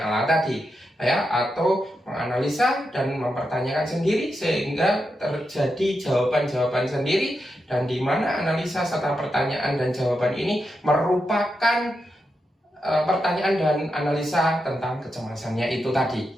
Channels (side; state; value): both; normal; correlation 0.86